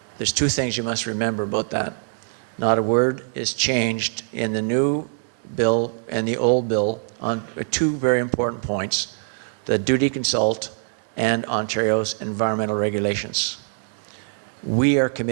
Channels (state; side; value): silent; left; digital silence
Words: there's two things you must remember about that. Not a word is changed in the new bill and the old bill on two very important points: the duty to consult and Ontario's environmental regulations. We are